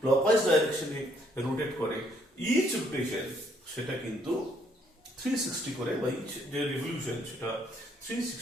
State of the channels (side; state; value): both; normal; correlation 0.68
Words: ক্লকওয়াইজ ডাইরেকশনে রোটেট করে, ইচ রোটেশন সেটা কিন্তু 360 করে, বা ইচ যে রিভলিউশন সেটা